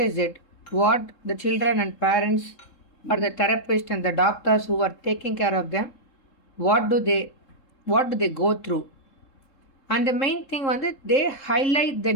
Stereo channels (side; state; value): right; late; 3.7 ms